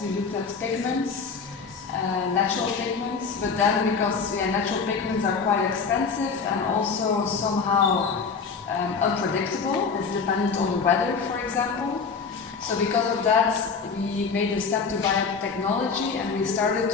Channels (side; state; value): right; quieter; 5.3 dB